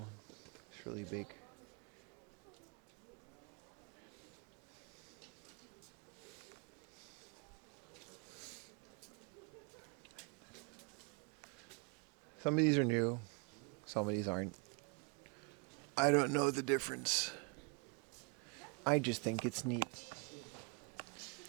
It's really big. Some of these are new. Some of these aren't. I don't know the difference. I just think it's neat.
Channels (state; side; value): quieter; left; 33.8 dB